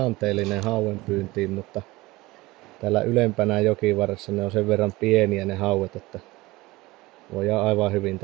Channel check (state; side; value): quieter; left; 20.4 dB